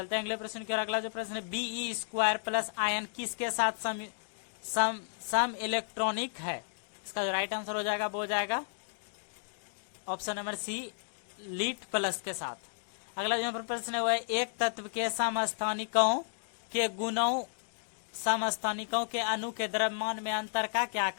हैं अगले प्रश्न की ओर। अगला जो प्रश्न है Be2 प्लस आयन किसके साथ सम इलेक्ट्रॉनिक है। इसका जो राइट आंसर हो जाएगा वो हो जाएगा option number C lead plus के साथ। अगला जो प्रश्न है वो है एक तत्व के समस्थानिकों के गुणों समस्थानिकों के अणु के द्रव्यमान में अंतर का क्या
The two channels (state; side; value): silent; right; digital silence